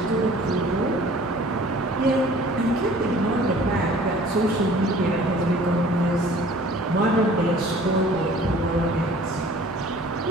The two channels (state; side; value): normal; both; correlation 0.50